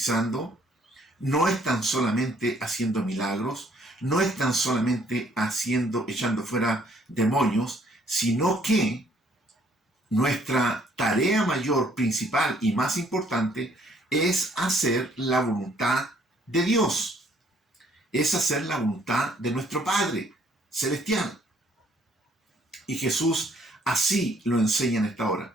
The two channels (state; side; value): normal; both; correlation 0.64